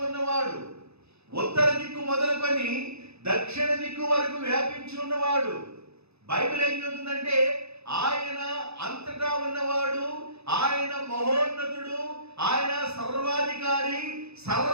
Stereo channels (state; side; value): late; left; 0.79 ms